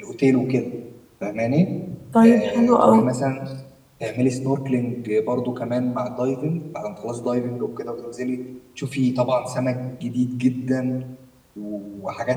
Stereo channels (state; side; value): identical; both; correlation 1.00